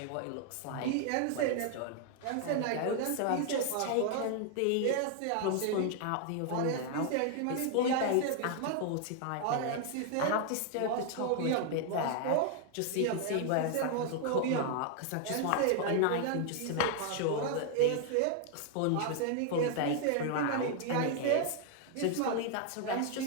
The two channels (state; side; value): different; both; correlation 0.00